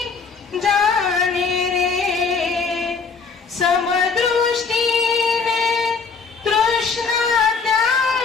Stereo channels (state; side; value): quieter; right; 5.0 dB